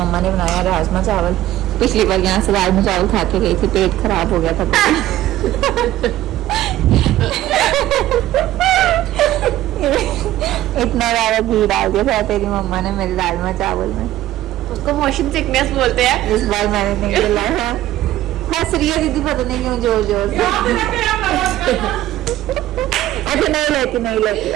ने बनाया राजमा चावल। पिछली बार यहाँ से राजमा चावल खा के गई थी, पेट खराब हो गया था। इतना ज्यादा घी डाल दिया था तेरी मम्मा ने मेरे राजमा चावल में। उसको मोशन सिकनेस बोलते हैं। इस बार मैंने नहीं खिलाया। हंस रही है दीदी, पता नहीं क्यों जोर जोर से। अच्छा नहीं लेती इस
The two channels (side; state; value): left; quieter; 14.3 dB